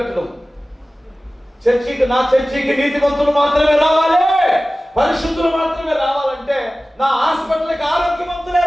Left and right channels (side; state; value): both; normal; correlation 0.96